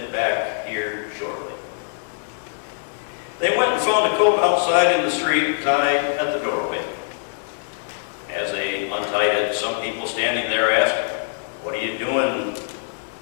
back here shortly.'" They went and found a colt outside in the street, tied at the doorway. As they untied it, some people standing there asked, "What are you doing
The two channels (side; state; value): right; silent; digital silence